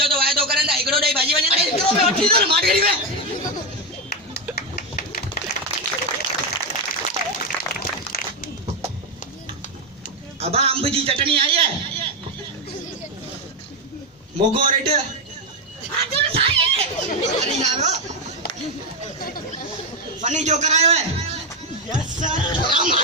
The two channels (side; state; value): both; normal; correlation 0.07